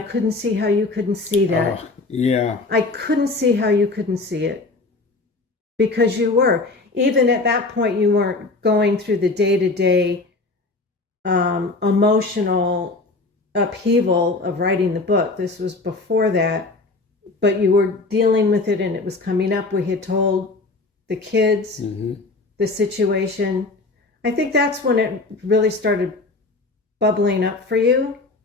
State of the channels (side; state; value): right; quieter; 3.4 dB